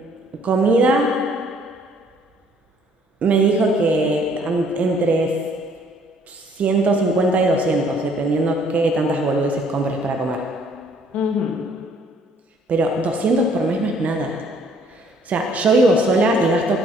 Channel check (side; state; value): both; normal; correlation 0.61